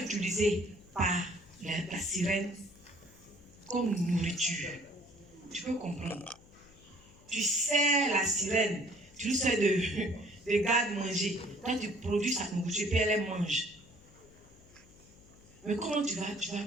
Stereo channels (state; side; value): noise; left; hum, 25 dB below the sound